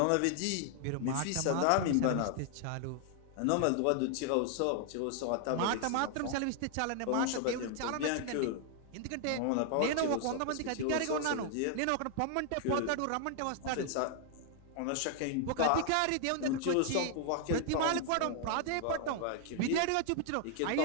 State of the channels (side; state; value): both; different; correlation 0.00